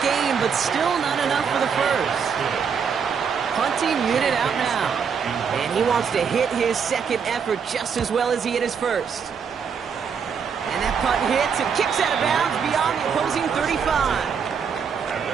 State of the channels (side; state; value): left; quieter; 6.6 dB